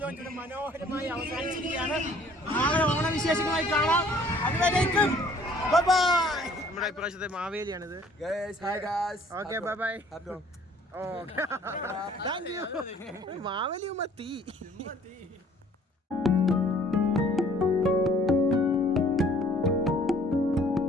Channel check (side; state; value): both; normal; correlation 0.56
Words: ലോഞ്ച് മനോഹരമായി അവസാനിച്ചിരിക്കുകയാണ്. നാളെ ഓണവിശേഷങ്ങളായി കാണാം. അതുവരേക്കും നമ്മുടെ ഇപ്രാവശ്യത്തെ മാവേലിയാണിത്. Okay bye bye. മാവേലിയുമ്പോ തീ